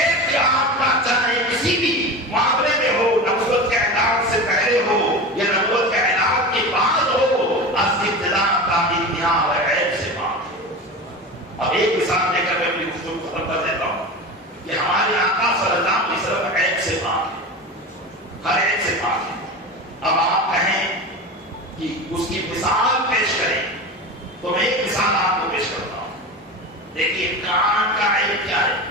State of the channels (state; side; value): normal; both; correlation 0.28